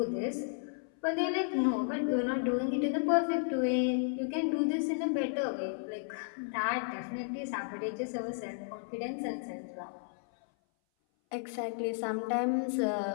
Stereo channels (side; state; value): right; silent; 56 dB below the other